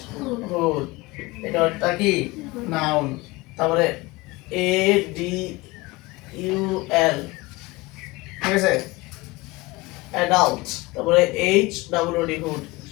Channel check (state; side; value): quieter; right; 22.2 dB